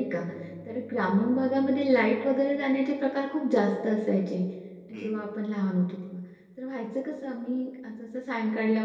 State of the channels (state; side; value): identical; both; correlation 1.00